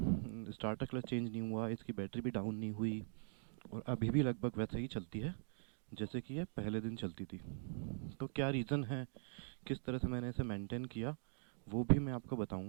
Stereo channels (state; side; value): silent; left; digital silence